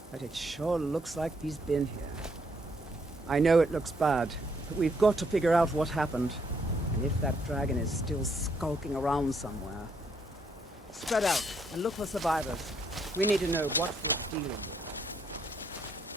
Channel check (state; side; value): normal; both; correlation 0.72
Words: but it sure looks like he's been here. I know it looks bad, but we've got to figure out what happened. And if that dragon is still skulking around somewhere. Spread out and look for survivors. We need to know what we're dealing with.